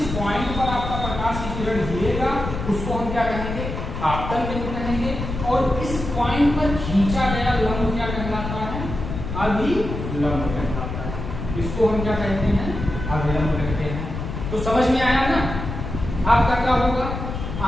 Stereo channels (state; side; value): noise; left; rumble, 6 dB below the sound